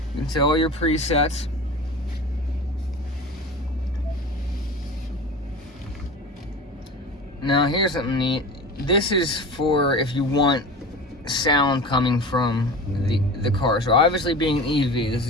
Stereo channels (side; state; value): both; normal; correlation 0.33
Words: You can set all your presets. Now here's something neat. This is for if you want sound coming from the car. So obviously being an EV, this